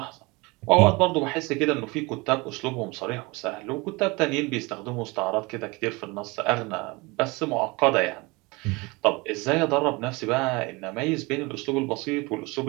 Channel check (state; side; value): quieter; left; 25.1 dB